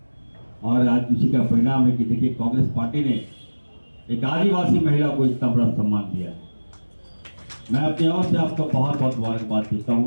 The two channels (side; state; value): both; inverted; correlation -1.00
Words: और आज उसी का परिणाम है कि देखिए कांग्रेस पार्टी ने एक आदिवासी महिला को इतना बड़ा सम्मान दिया है। मैं अपनी ओर से आपको बहुत बहुत मुबारकबाद देता